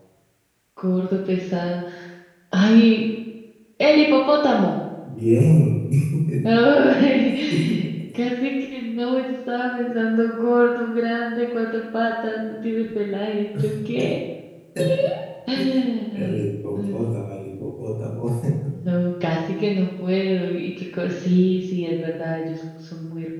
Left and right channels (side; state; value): both; identical; correlation 1.00